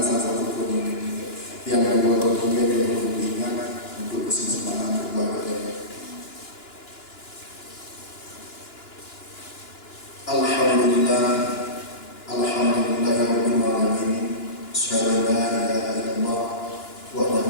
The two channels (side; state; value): right; late; 2.9 ms